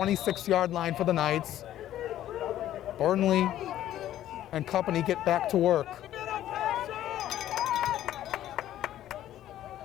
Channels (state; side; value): quieter; right; 12.6 dB